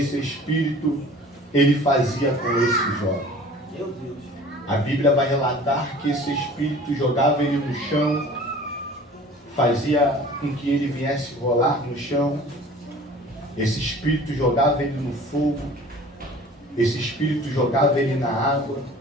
espírito ele fazia com esse jovem. Meu Deus. A Bíblia vai relatar que esse espírito jogava ele no chão, fazia com que ele viesse rolar no chão. Esse espírito jogava ele no fogo. Esse espírito jogava ele na água.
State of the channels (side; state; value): both; normal; correlation 0.46